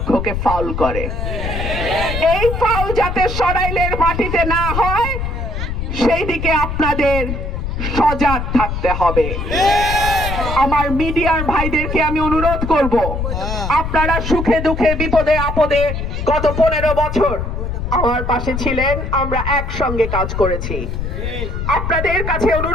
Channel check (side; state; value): left; noise; rumble, 4 dB below the sound